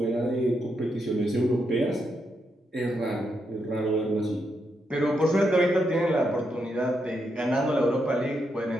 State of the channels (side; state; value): both; normal; correlation 0.82